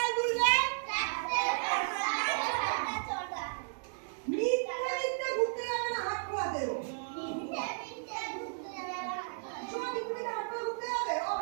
তুলবে? মিথ্যে মিথ্যে ঘুরতে যাবে না, হাত খোলা দেবো। শুভ মিথ্যে মিথ্যে হাত খোলা ঘুরতে যাবে? ও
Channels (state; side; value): silent; left; digital silence